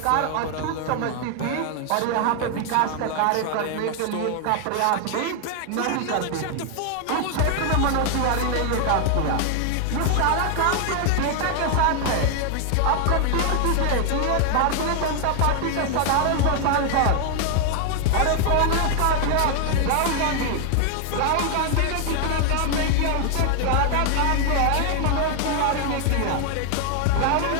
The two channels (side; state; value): both; different; correlation 0.00